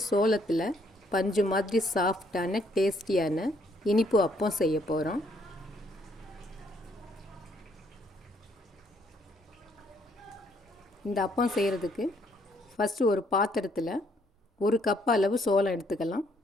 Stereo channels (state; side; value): normal; both; correlation 0.68